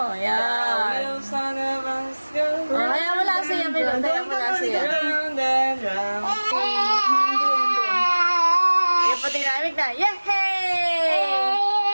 Yan. Wheels on a bus go Kaya mo lang siya, Milon. Kaya mo lang siya. round and round. Yung pati namig na. Yehey!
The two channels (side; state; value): both; inverted; correlation -1.00